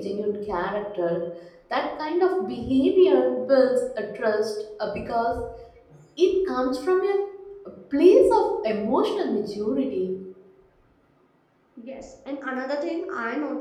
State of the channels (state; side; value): identical; both; correlation 1.00